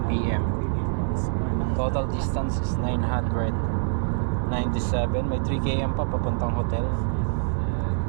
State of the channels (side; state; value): left; silent; digital silence